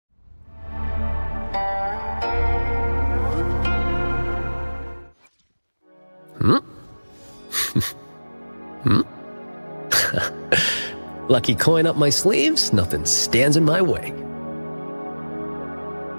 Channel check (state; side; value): inverted; both; correlation -1.00